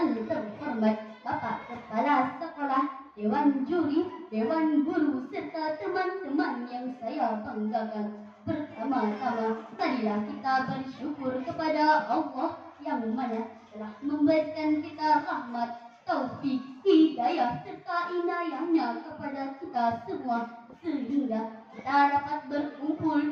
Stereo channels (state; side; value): identical; both; correlation 1.00